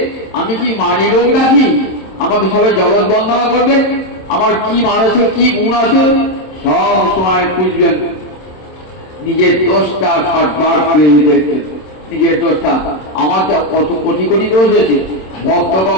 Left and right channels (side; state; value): right; late; 26 ms